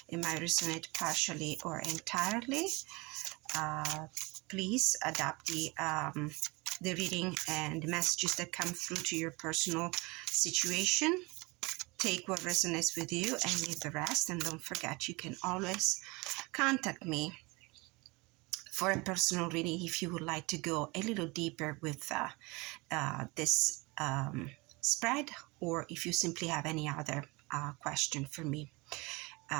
It might resonate partially or entirely. Please adapt the reading and the messages that come through to your personal situation. Take what resonates with you and leave the rest. And don't forget, you can always contact me for a personal reading if you would like to go a little deeper with this spread, or if you simply have any other question for me.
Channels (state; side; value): quieter; left; 25.5 dB